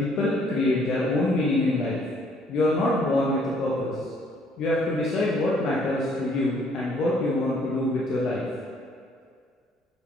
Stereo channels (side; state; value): both; normal; correlation 0.63